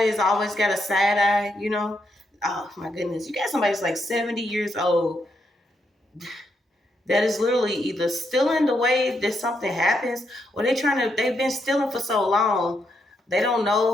that's always got a side eye, you know. Oh my goodness. You got somebody that's like 70 years old that is literally either stealing the way that something happens, or they've been stealing for so long they don't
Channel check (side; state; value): both; normal; correlation 0.79